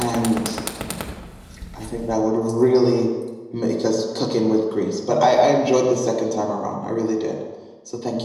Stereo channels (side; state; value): both; identical; correlation 1.00